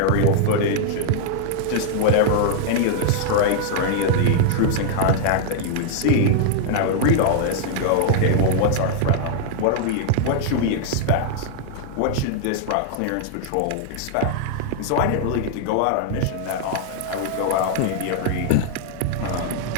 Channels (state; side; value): different; both; correlation -0.01